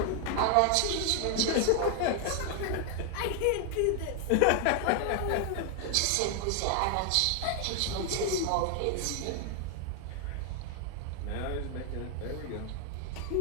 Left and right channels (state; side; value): different; both; correlation 0.00